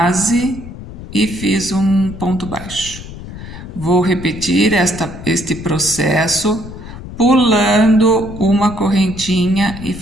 e fiz um ponto baixo. Vou repetir este processo pulando uma correntinha e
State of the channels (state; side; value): noise; left; rumble, 13 dB below the sound